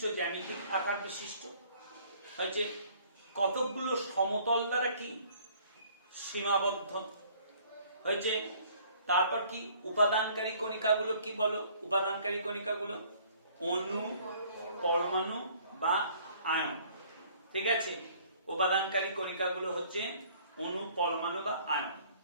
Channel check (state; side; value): inverted; both; correlation -0.57